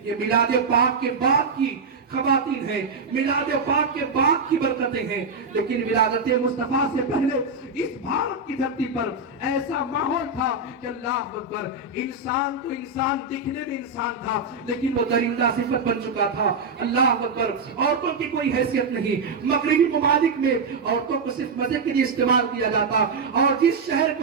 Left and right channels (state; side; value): quieter; left; 3.9 dB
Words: یہ میلاد پاک کے بعد کی خواتین ہیں، میلاد پاک کے بعد کی برکتیں ہیں. لیکن ولادت مصطفیٰ سے پہلے اس بھارت کی دھرتی پر ایسا ماحول تھا کہ اللہ اکبر، انسان تو انسان دکھنے میں انسان تھا لیکن وہ درندہ صفت بن چکا تھا. اللہ اکبر، عورتوں کی کوئی حیثیت نہیں. مغربی ممالک میں عورتوں کو صرف مزے کے لیے استعمال کیا جاتا، اور جس شہر